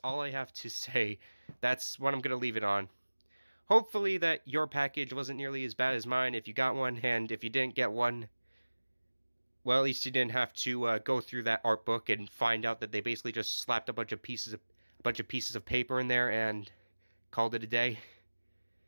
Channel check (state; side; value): inverted; both; correlation -1.00